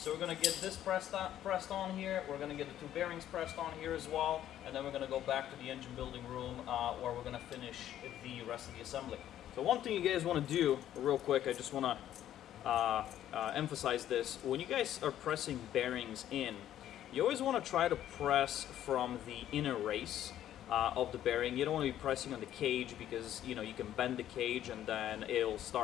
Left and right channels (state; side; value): quieter; right; 11.7 dB